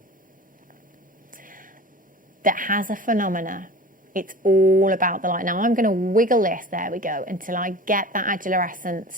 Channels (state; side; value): normal; both; correlation 0.37